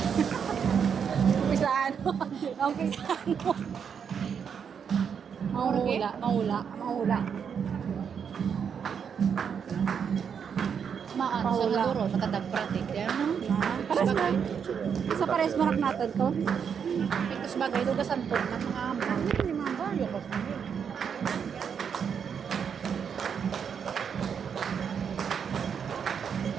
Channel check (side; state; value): left; quieter; 7.2 dB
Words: Pisano. Ang pisano. Mahula. Mahula. Mahula. Maan sa Paula. naduro matadag pratik yan. Pares na. Sa pares marak natin to. Ito bagay do gasanton ng mga amo. Ni mama yo ko.